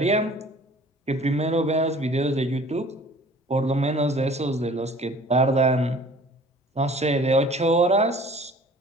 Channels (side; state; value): both; normal; correlation 0.49